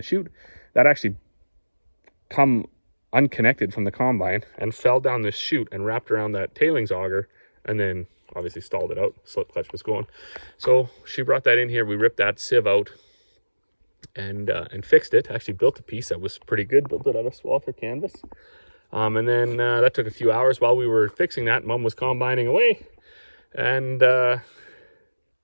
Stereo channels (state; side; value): inverted; both; correlation -1.00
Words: chute. That actually come unconnected from the combine and fell down this chute and wrapped around that tailings auger, and then obviously stalled it out. Slip clutch was going. So she brought that in here. We ripped that sieve out, and fixed it. Actually built a piece that was pretty good, built it out of Swather canvas. And then that took a few hours while we were fixing that. Mom was combining away, and